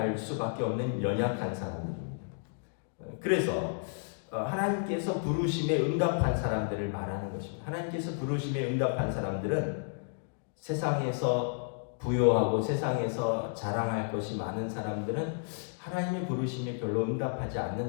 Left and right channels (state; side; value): silent; right; digital silence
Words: 수밖에 없는 연약한 사람들입니다. 그래서 하나님께서 부르심에 응답한 사람들을 말하는 것입니다. 하나님께서 부르심에 응답한 사람들은 세상에서 부요하고 세상에서 자랑할 것이 많은 사람들은 하나님의 부르심에 별로 응답하지